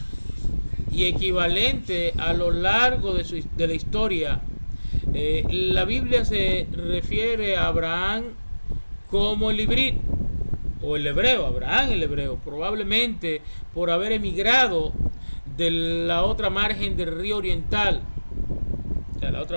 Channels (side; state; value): both; inverted; correlation -1.00